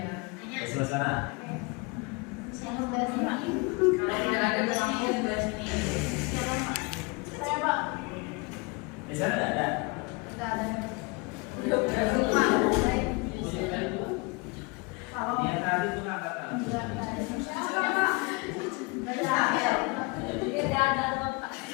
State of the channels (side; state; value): right; quieter; 28.6 dB